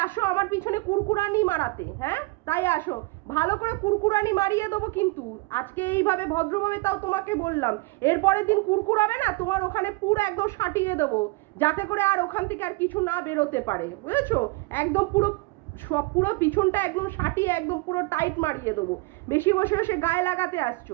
আসো আমার পিছনে কুরকুরানি মারাতে। হ্যাঁ, তাই আসো, ভালো করে কুরকুরানি মারিয়ে দেবো কিন্তু আজকে এইভাবে ভদ্রভাবে, তাও তোমাকে বললাম। এরপরের দিন কুরকুরাবে না, তোমার ওখানে পুরো একদম সাটিয়ে দেবো, যাতে করে আর ওখান থেকে আর কিছু না বেরোতে পারে, বুঝেছো? একদম পুরো সব পুরো পিছনটা একদম সাটিয়ে একদম পুরো টাইট মারিয়ে দেবো। বেশি বসে বসে গায়ে লাগাতে আসছো,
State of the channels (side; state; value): left; quieter; 24.9 dB